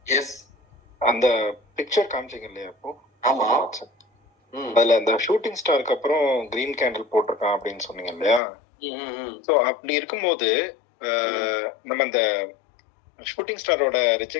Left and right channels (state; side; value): drops out; right; at 8.4 s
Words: எஸ், அந்த பிக்சர் காமிச்சிங்க இல்லையா இப்போ? ஆமா, அதுல அந்த ஷூட்டிங் ஸ்டாருக்கு அப்புறம் கிரீன் கேண்டில் போட்டிருக்கான் அப்படின்னு சொன்னீங்க இல்லையா? சோ அப்படி இருக்கும்போது நம்ம அந்த ஷூட்டிங் ஸ்டாரோட